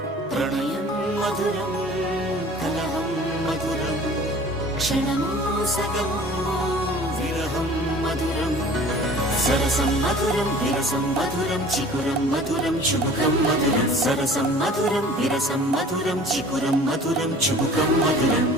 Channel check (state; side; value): normal; both; correlation 0.46